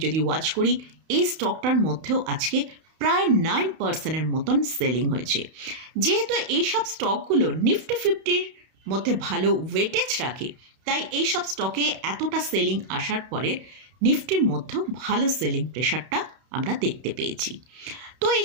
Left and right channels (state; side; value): late; left; 31 ms